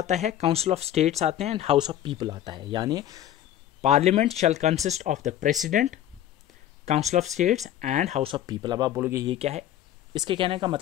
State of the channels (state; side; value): quieter; right; 11.7 dB